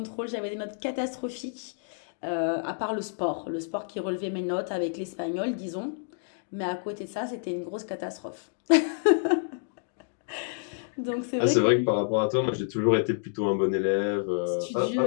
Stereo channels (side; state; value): right; silent; digital silence